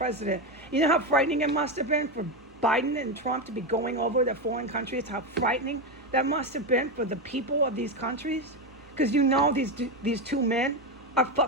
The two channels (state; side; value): normal; both; correlation 0.12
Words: You know how frightening it must have been for Biden and Trump to be going over to foreign countries? How frightening that must have been for the people of these countries? Because you know these two men are